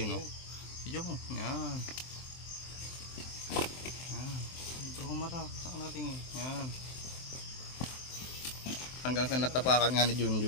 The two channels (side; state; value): right; late; 23 ms